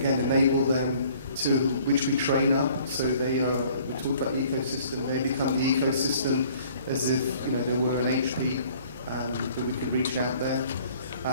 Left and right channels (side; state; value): both; inverted; correlation -0.56